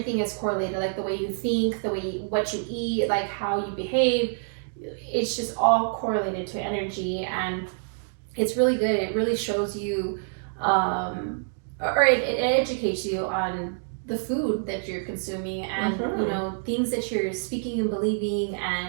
is correlated, like the way you think, what you eat, like how you behave. It's just all correlated to energy, and it's really good. It really shows you, or it educates you on the food that you're consuming, and things that you're speaking and believing,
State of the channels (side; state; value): left; silent; digital silence